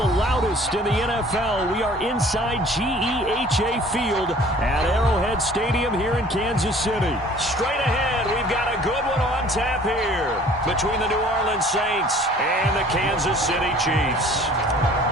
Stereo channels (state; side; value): normal; both; correlation 0.51